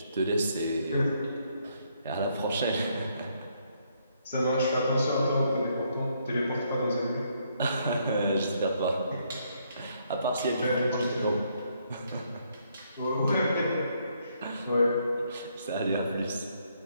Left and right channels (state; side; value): inverted; both; correlation -0.72